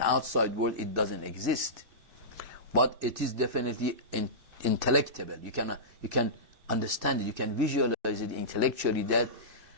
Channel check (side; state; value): left; late; 2.5 ms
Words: world it doesn't exist. But it is definitely intellectable. You can understand it, you can visualize it intellectually, that